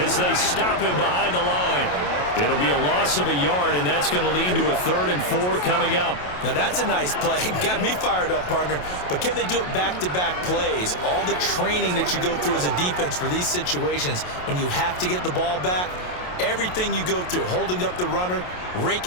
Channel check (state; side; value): late; right; 28 ms